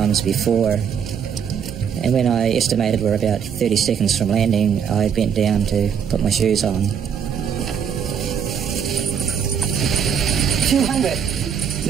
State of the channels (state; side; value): quieter; left; 7.6 dB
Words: before, and when I estimated we're about 30 seconds from landing, I bent down to put my shoes on. 200.